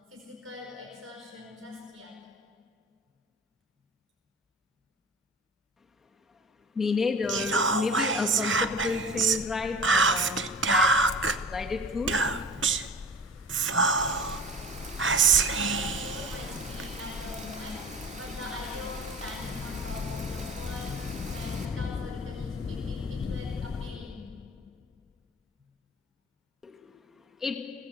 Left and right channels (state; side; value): normal; both; correlation 0.38